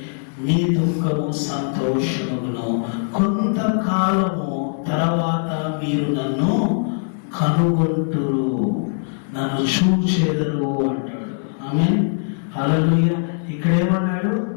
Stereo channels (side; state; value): right; silent; digital silence